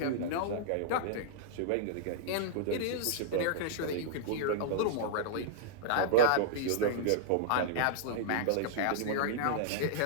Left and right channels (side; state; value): both; different; correlation -0.01